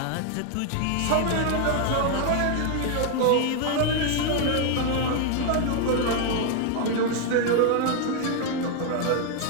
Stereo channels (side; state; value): both; different; correlation 0.01